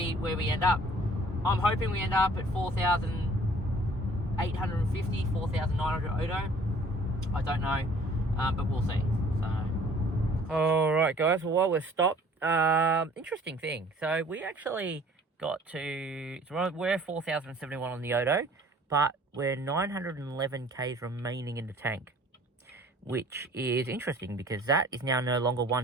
where we end up. I'm hoping we end up at 4,850, 4,900 Odo. I don't know, but we'll see. So, all right, guys. Well, while we're stopped, interesting thing. So we actually got to, we're 4,071 on the Odo, but we're 911 k's remaining in the tank. which is interesting because that is now no longer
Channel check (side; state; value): both; normal; correlation 0.53